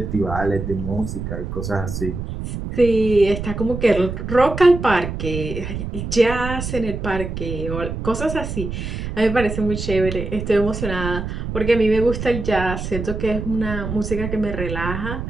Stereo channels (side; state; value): right; noise; rumble, 5 dB below the sound